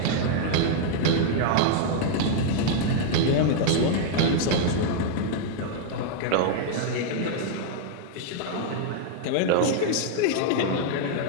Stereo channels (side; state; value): both; different; correlation -0.01